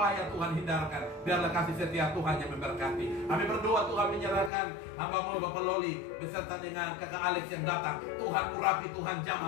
Tuhan hindarkan, biarlah kasih setia Tuhan yang memberkati. Kami berdoa Tuhan menyerahkan hamba-Mu Bapak Loli beserta dengan kakak Alex yang datang. Tuhan urapi, Tuhan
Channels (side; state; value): right; drops out; at 4.5 s